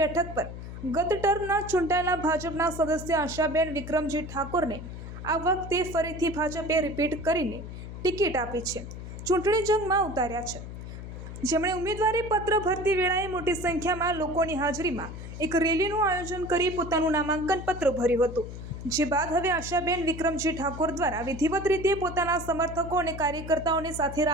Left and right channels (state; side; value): noise; left; hum, 10 dB below the sound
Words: પર ગત ટર્મના ચૂંટાયેલા ભાજપના સદસ્ય આશાબેન વિક્રમજી ઠાકોરને આ વખતે ફરીથી ભાજપે રિપીટ કરીને ટિકિટ આપી છે, ચૂંટણી જંગમાં ઉતાર્યા છે, જેમણે ઉમેદવારી પત્ર ભરતી વેળાએ મોટી સંખ્યામાં લોકોની હાજરીમાં એક રેલીનું આયોજન કરી પોતાનું નામાંકન પત્ર ભર્યું હતું, જે બાદ હવે આશાબેન વિક્રમજી ઠાકોર દ્વારા વિધિવત રીતે પોતાના સમર્થકો અને કાર્યકર્તાઓને સાથે